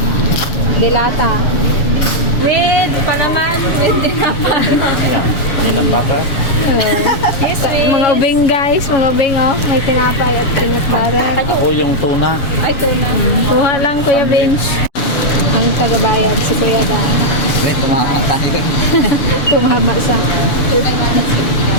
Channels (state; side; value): late; right; 7.1 ms